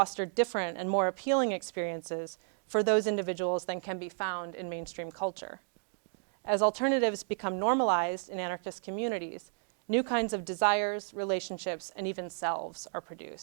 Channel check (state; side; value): silent; left; 56 dB below the other